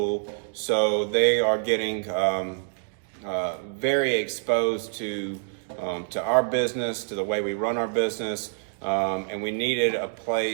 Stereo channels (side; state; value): left; silent; digital silence